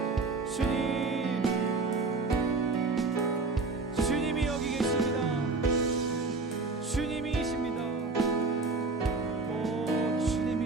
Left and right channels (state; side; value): quieter; left; 3.8 dB